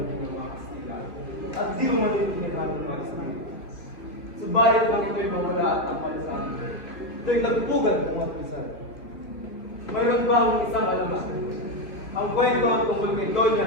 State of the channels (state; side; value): late; right; 3.0 ms